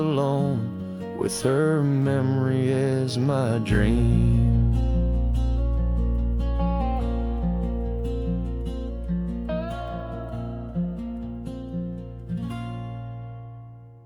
with her memory as my dream.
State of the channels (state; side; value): identical; both; correlation 1.00